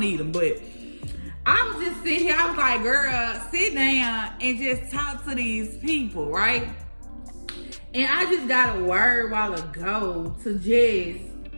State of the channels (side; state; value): both; inverted; correlation -1.00